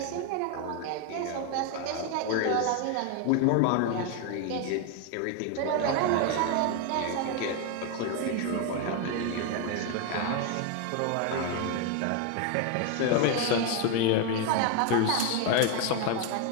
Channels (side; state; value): both; different; correlation 0.01